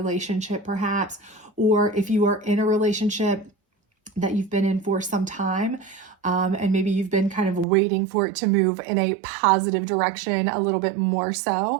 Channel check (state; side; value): drops out; left; at 7.7 s